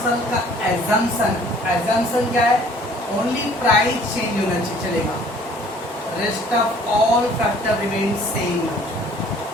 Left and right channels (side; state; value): both; normal; correlation 0.55